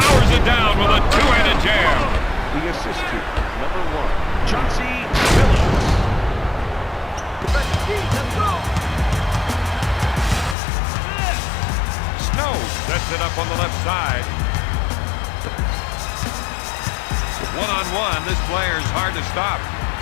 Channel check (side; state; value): right; drops out; at 10.6 s